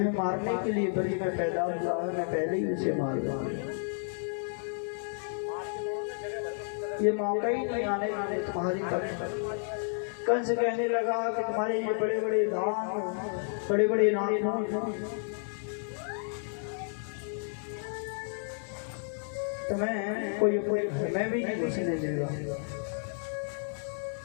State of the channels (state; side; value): silent; right; digital silence